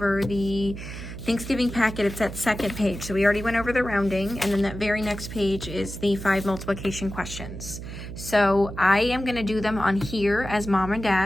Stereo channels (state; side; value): noise; right; hum, 9 dB below the sound